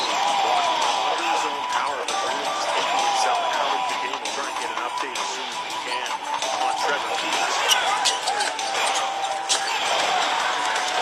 walking him under his own power, but really just taking himself out of the game. We'll try and get an update as soon as we can on Trevor Keels.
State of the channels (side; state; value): both; identical; correlation 1.00